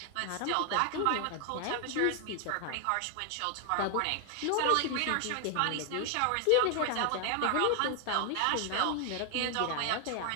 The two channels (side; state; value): both; different; correlation 0.00